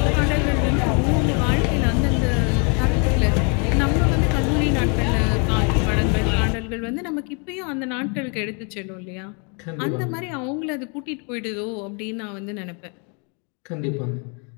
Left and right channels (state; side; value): quieter; right; 36.4 dB